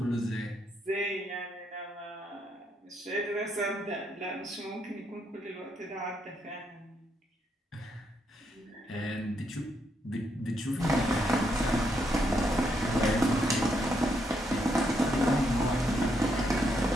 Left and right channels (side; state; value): both; normal; correlation 0.77